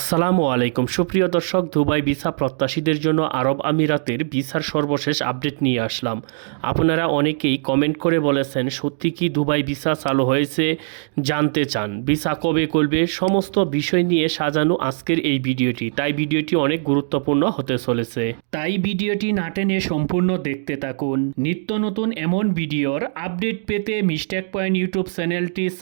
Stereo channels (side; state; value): left; silent; digital silence